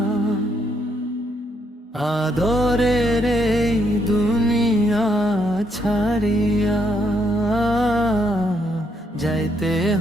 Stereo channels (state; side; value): normal; both; correlation 0.74